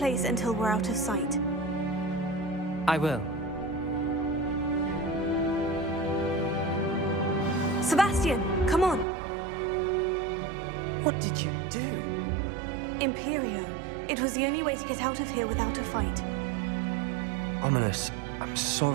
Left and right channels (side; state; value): left; drops out; at 9.1 s